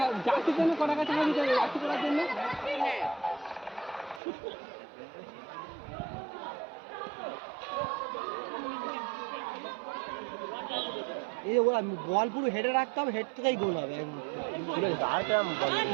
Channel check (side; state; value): left; drops out; at 4.2 s